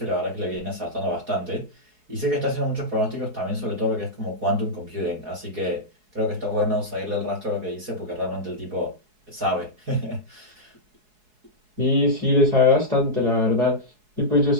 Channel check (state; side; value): late; left; 4.7 ms